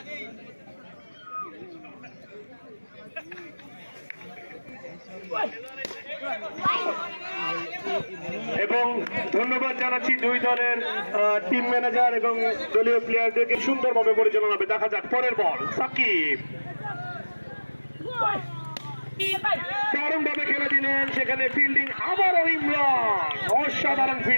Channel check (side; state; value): both; inverted; correlation -1.00